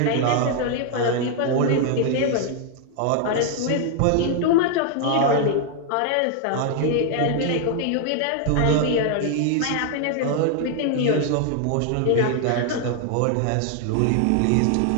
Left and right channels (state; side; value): different; both; correlation 0.00